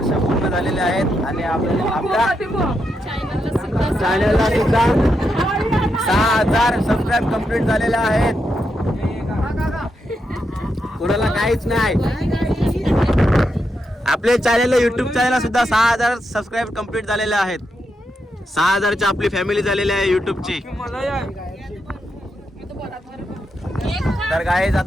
पूर्ण झालेले आहेत आणि आपल्या चॅनलला सुद्धा 6,000 सबस्क्राईब कंप्लीट झालेले आहेत. कुणाला काहीच नाही. आपल्या चॅनलला युट्यूब चॅनलला सुद्धा 6,000 सबस्क्राईब कंप्लीट झालेले आहेत. 6,000ची आपली फॅमिली झालेली आहे युट्यूबची. तर गाईज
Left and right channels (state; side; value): normal; both; correlation 0.84